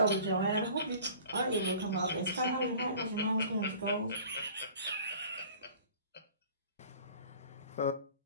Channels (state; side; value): inverted; both; correlation -0.46